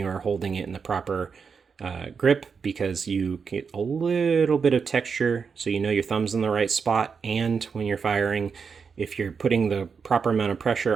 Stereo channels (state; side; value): quieter; left; 5.8 dB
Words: are holding it in the proper grip, because you get a little bit of texture so you know your thumb's in the right spot, and when you're firing, if you're putting the proper amount of